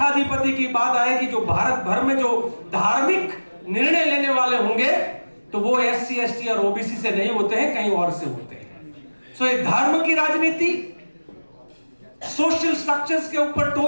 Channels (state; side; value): inverted; both; correlation -1.00